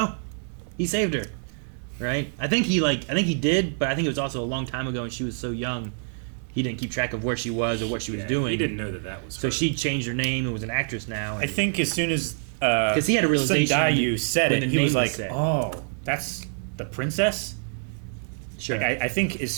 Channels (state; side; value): silent; left; 61 dB below the other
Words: He saved her, right? I think he did, but I think it was also a long time ago, and she was so young, he didn't keep track of where she was or what she was Yeah, doing. He didn't know that was So her. she changed her name and was an actress now. I think as soon as Because he had a realization Sundayu said when it, the he was name like, was said. "Oh, that's the princess." Sure. Like, I think as